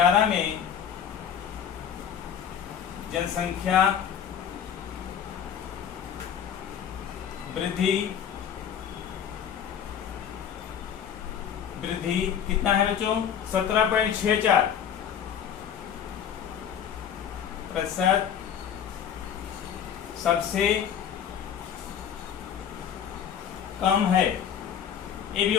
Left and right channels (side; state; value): right; quieter; 8.6 dB